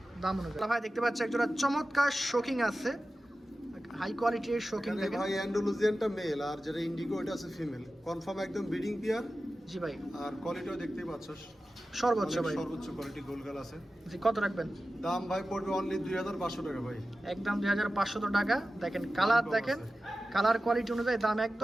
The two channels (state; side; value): normal; both; correlation 0.94